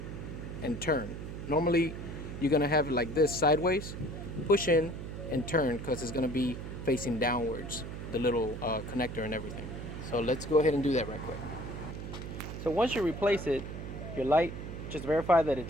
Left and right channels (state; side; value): noise; right; hum, 8 dB below the sound